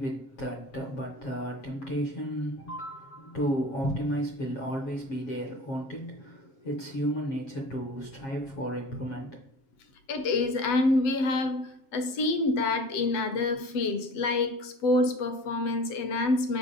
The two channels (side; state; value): right; late; 7.5 ms